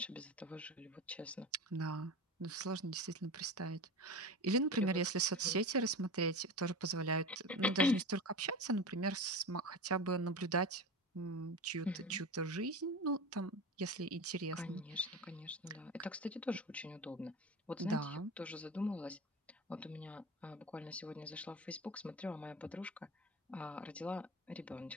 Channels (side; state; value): both; normal; correlation 0.27